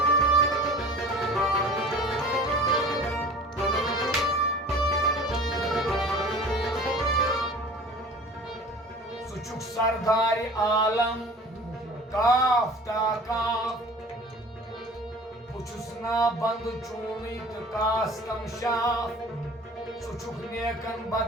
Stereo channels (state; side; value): normal; both; correlation 0.43